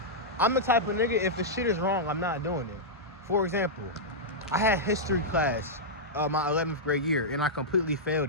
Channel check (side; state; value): both; normal; correlation -0.10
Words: I'm the type of nigga, if the shit is wrong, I'm not doing it. For example, I had history class my 11th grade year, and I completely